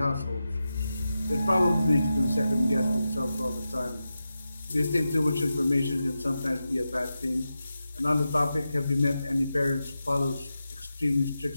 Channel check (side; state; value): both; inverted; correlation -0.91